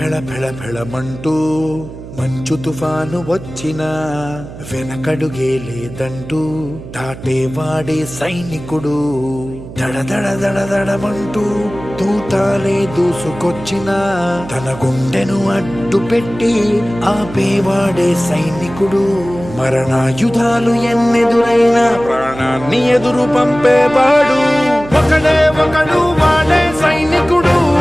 ఫెళ ఫెళమంటూ మంచు తుఫాను వచ్చినా వెనకడుగే లేదంటూ దాటేవాడే సైనికుడు. దడ దడ దడ దడమంటూ తూటాలే దూసుకొచ్చినా తన గుండెను అడ్డు పెట్టి ఆపేవాడే సైనికుడు. మరణాయుధాలు ఎన్నెదురైనా ప్రాణాన్ని ఎదురు పంపేవాడు ఒకడే ఒకడు, వాడే సైనికుడు.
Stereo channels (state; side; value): noise; right; hum, 14 dB below the sound